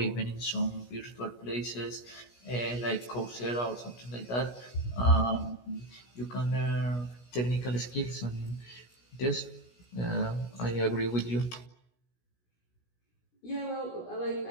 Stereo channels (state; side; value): late; right; 16 ms